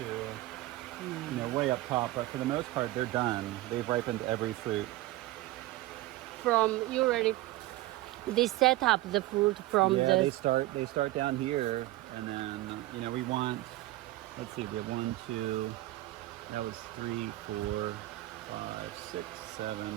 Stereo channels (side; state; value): left; quieter; 17.3 dB